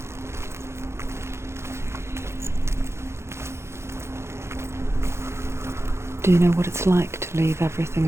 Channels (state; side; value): late; left; 0.13 ms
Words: Do you know what it's like to leave